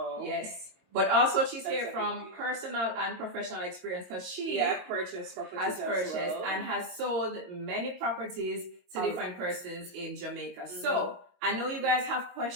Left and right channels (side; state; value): left; late; 22 ms